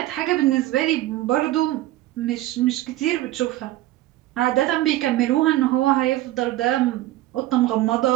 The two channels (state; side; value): quieter; left; 15.6 dB